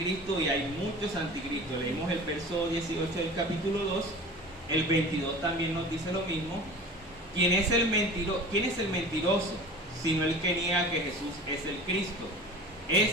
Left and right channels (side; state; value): both; normal; correlation 0.38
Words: y hay muchos anticristos. Leímos el verso 18 del capítulo 2. El 22 también nos dice lo mismo. ¿Quién es el mentiroso? Sino el que niega que Jesús es el Cristo.